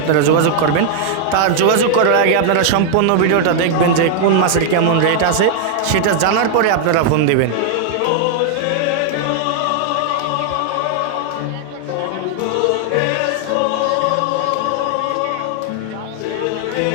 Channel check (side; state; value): both; different; correlation 0.00